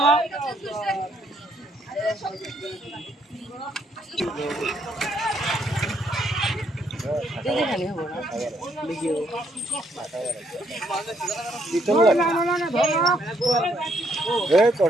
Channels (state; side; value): normal; both; correlation 0.71